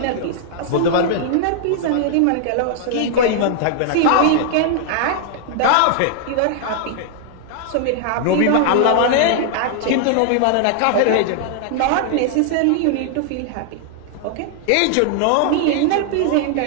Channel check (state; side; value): different; both; correlation 0.00